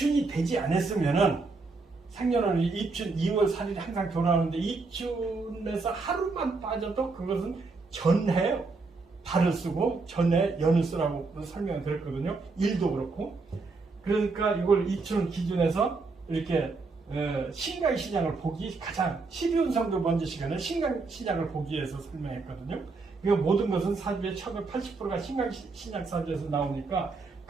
되지 않았으면은 상년월은 입춘 2월 4일이 항상 돌아오는데 입춘에서 하루만 빠져도 그것은 전해 발을 쓰고 전해 연을 쓰라고 설명을 드렸거든요. 일도 그렇고. 그러니까 이걸 입춘 기준에서 이렇게 신강 신약을 보기 가장 12운성도 먼저 시간에 신강 신약을 보기 위해서 설명했거든요. 그러니까 모든 것은 사주의 1980%가 신강 신약 사주에서 나오니까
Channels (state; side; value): quieter; left; 4.0 dB